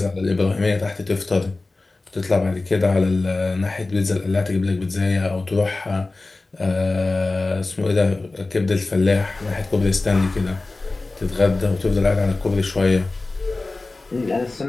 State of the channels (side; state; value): right; quieter; 3.3 dB